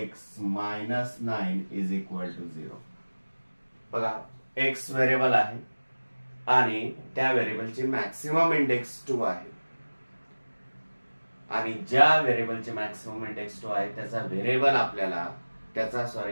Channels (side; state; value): both; inverted; correlation -1.00